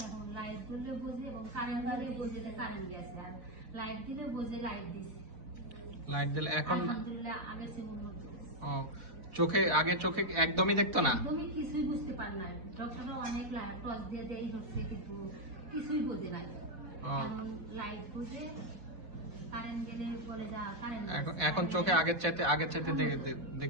এখন লাইট জ্বললেও বোঝে এবং কারেন্ট দিলেও বোঝে যে কারেন্ট গেছে, আর লাইট দিলেও বোঝে লাইট দিছে। লাইট দিলে এখন আলহামদুলিল্লাহ আগে শ্রেণীর মতো। ও, আগে চোখে একদমই দেখতো না? তুমি কিছুই বুঝতে পার না, ডক্টরে অনেক লাইট টর্চ দিয়ে দেয় হচ্ছে কিন্তু কিছুই বোঝে না। এখন লাইট বোঝে, কারেন্ট গেলে বলে যা কারেন্ট। এখন চোখে আগের চাইতে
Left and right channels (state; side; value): late; left; 4.1 ms